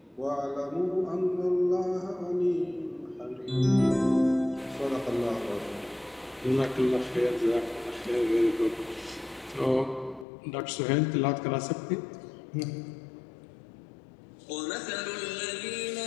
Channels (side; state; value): right; drops out; at 10.2 s